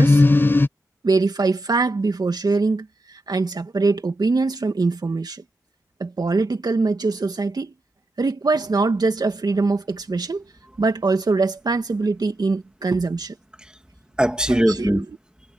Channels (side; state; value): both; normal; correlation 0.86